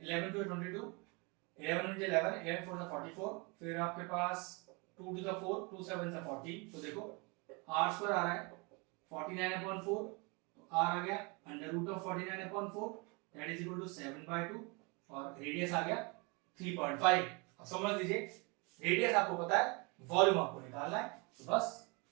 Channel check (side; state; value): left; quieter; 29.7 dB